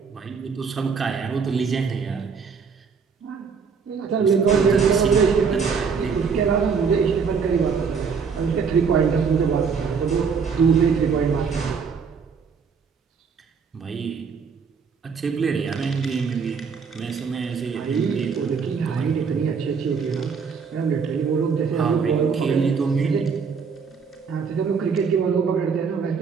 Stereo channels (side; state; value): left; quieter; 5.8 dB